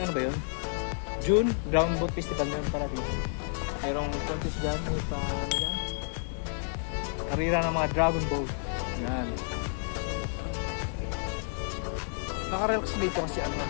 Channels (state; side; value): silent; right; 58 dB below the other